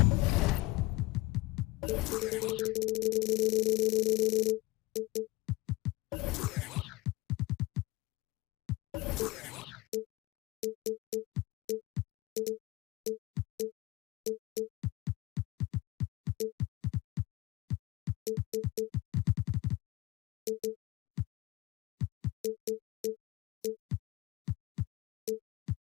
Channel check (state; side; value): quieter; right; 20.4 dB